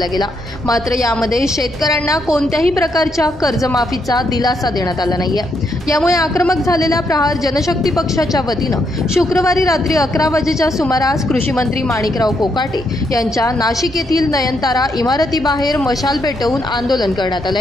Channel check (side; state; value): both; normal; correlation 0.77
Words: गेला। मात्र यामध्ये शेतकऱ्यांना कोणत्याही प्रकारच्या कर्जमाफीचा दिलासा देण्यात आला नाहीये। यामुळे आक्रमक झालेल्या प्रहार जनशक्ती पक्षाच्या वतीनं शुक्रवारी रात्री 11 वाजेच्या सुमारास कृषी मंत्री माणिकराव कोकाटे यांच्या नाशिक येथील नयनतारा इमारतीबाहेर मशाल पेटवून आंदोलन करण्यात